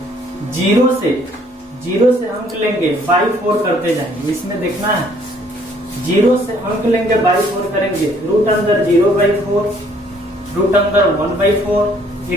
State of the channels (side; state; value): both; normal; correlation 0.62